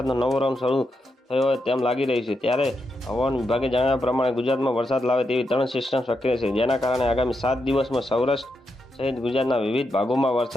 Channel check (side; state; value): both; normal; correlation 0.84